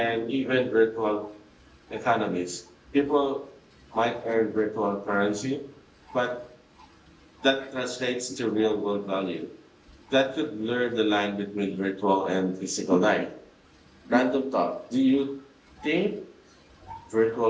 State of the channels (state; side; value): identical; both; correlation 1.00